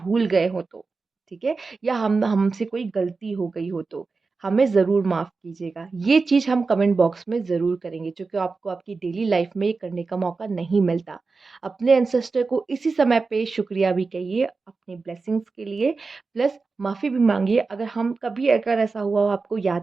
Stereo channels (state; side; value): quieter; left; 4.2 dB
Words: गए हो तो। ठीक है, या हमसे कोई गलती हो गई हो तो हमें ज़रूर माफ़ कीजिएगा। ये चीज़ हम कमेंट बॉक्स में ज़रूर करेंगे, क्योंकि आपको आपकी डेली लाइफ में ये करने का मौका नहीं मिलता। अपने एंसेस्टर को इसी समय पे शुक्रिया भी कहिए अपनी ब्लेसिंग्स के लिए, प्लस माफ़ी भी मांगिए अगर हम कभी अगर ऐसा हुआ हो आपको